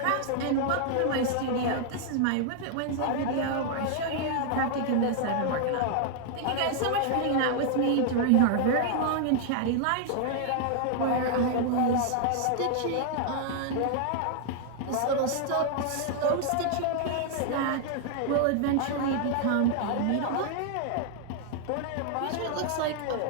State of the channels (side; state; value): both; different; correlation 0.00